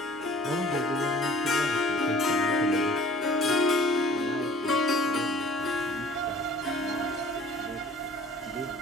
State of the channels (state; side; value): normal; both; correlation 0.50